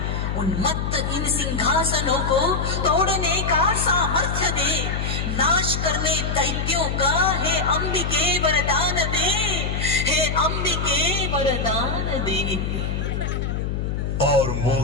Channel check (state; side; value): noise; left; hum, 2 dB below the sound